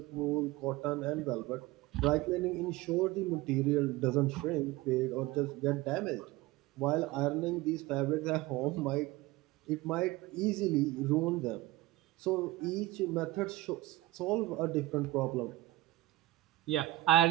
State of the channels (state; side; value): quieter; left; 18.2 dB